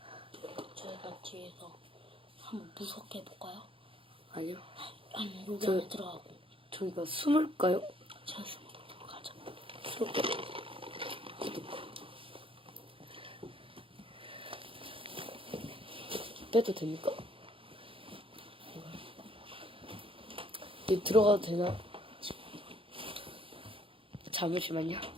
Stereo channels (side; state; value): left; late; 0.26 ms